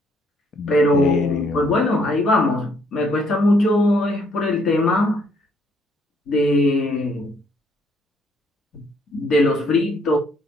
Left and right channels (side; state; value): both; normal; correlation 0.68